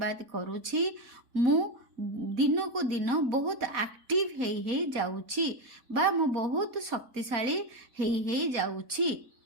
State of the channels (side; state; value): left; late; 4.0 ms